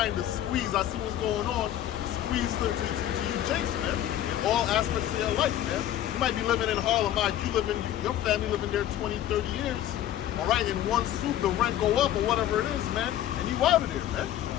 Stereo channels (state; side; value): quieter; right; 12.1 dB